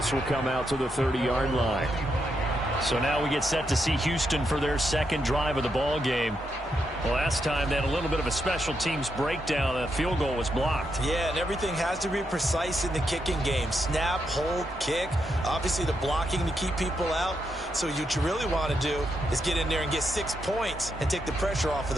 will come out to the 30-yard line. So now we get set to see Houston for their second drive of the ball game. Well, last time they had a little bit of a special teams breakdown. That field goal was blocked. Yeah, and everything has to be precise in the kicking game. Snap, hold, kick. Obviously, the blocking to keep people out. So what you really want to do is get in there and get 6 points and take the pressure off of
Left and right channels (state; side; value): normal; both; correlation 0.82